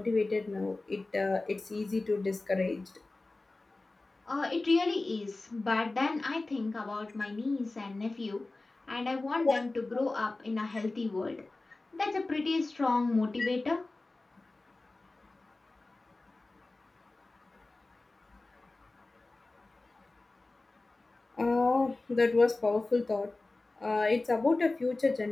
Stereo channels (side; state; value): right; quieter; 3.2 dB